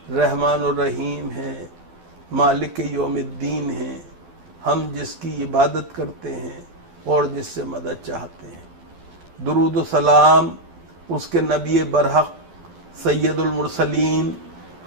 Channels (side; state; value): left; late; 12 ms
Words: رحمان الرحیم ہے، مالک یوم الدین ہے، ہم جس کی عبادت کرتے ہیں اور جس سے مدد چاہتے ہیں۔ درود و سلام اس کے نبی برحق، سید المرسلین،